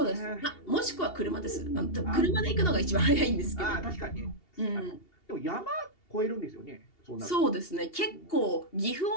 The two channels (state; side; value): late; right; 2.8 ms